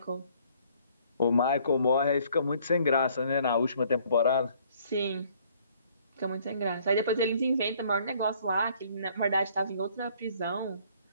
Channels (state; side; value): inverted; both; correlation -0.61